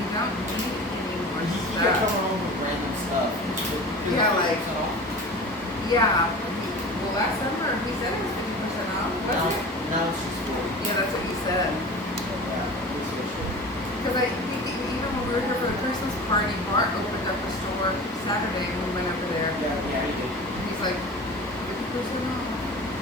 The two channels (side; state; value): both; normal; correlation 0.36